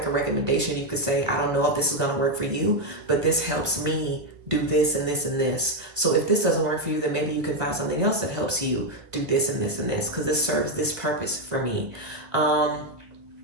a recommendation, you could say, I don't know if this is going to work for you, but this helps me do this and this and this. So if this doesn't work for you, then maybe you can find something else that helps you do this and this and this, because this serves this purpose for me.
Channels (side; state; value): left; late; 1.2 ms